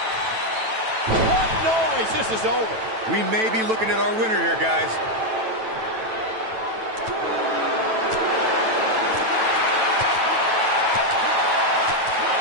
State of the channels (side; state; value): left; late; 9.1 ms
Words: What noise? This is over. We may be looking at our winner here, guys.